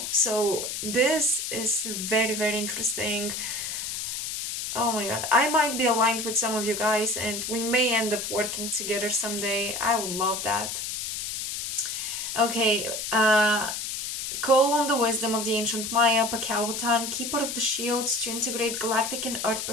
So this is very, very interesting. Oh my god, I might be aligned with some of you guys, and we may end up working together someday. I would love that. Okay, Call on the wisdom of the ancient Maya, Pakautan, keeper of the shields, to integrate galactic and earth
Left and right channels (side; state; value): left; noise; hiss, 4 dB below the sound